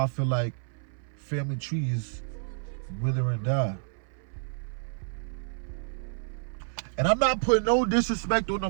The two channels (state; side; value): silent; left; 58 dB below the other